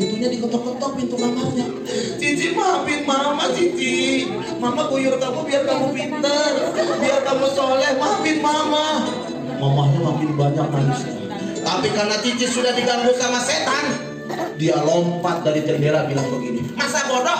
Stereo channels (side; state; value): both; identical; correlation 1.00